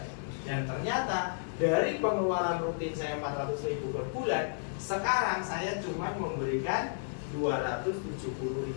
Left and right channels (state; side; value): silent; right; digital silence